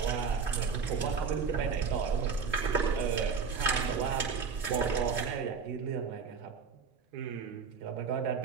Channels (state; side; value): quieter; left; 5.7 dB